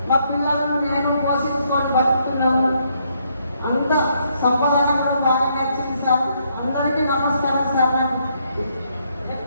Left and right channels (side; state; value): both; inverted; correlation -0.73